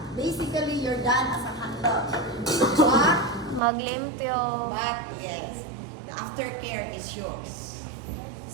Basically, you're done as a handler. Maglimpyo. But yes, the aftercare is yours.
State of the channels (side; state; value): left; drops out; at 3.6 s